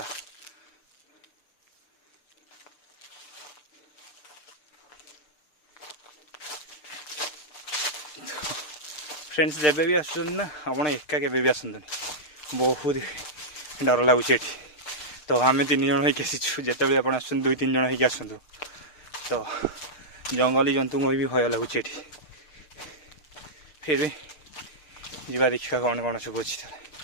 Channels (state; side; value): late; right; 6.5 ms